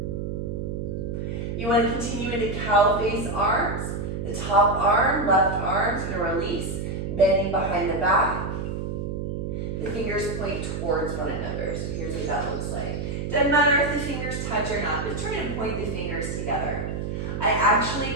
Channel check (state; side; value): noise; right; hum, 4 dB below the sound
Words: You want to continue into cow face arms. The top arm, left arm is going to release, bending behind the back. The fingers point towards one another. So here's what that looks like. Doesn't matter if the fingers touch or not, but try to point the fingers together. I actually